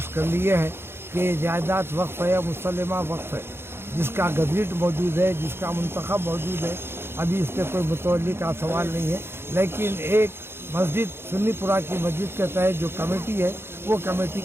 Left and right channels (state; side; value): late; left; 0.11 ms